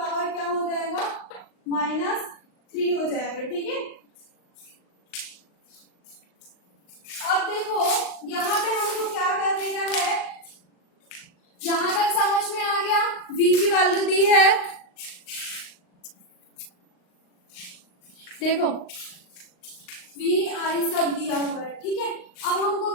क्या हो जाएगा, -3 हो जाएगा, ठीक है। अब देखो यहाँ पे हमको क्या करने का है, यहां तक समझ में आ गया। V की वैल्यू दी है, देखो V I सब दिया हुआ है, ठीक है। अब हमको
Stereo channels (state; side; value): late; right; 39 ms